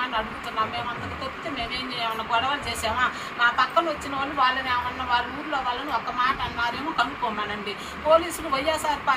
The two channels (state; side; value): identical; both; correlation 1.00